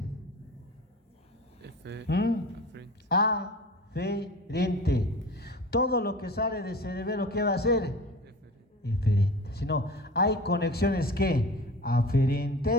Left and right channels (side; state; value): both; normal; correlation 0.37